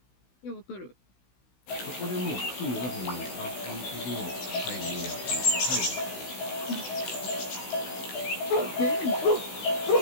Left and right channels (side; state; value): right; late; 16 ms